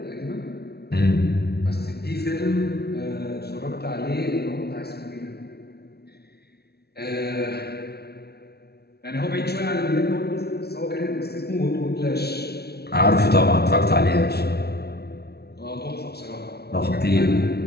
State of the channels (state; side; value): late; right; 0.47 ms